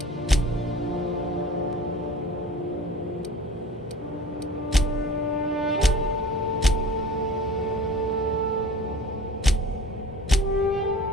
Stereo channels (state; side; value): normal; both; correlation 0.43